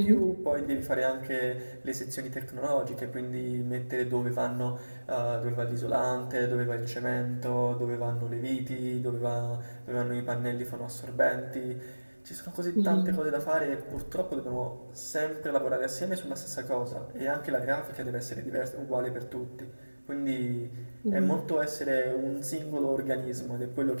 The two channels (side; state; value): both; inverted; correlation -1.00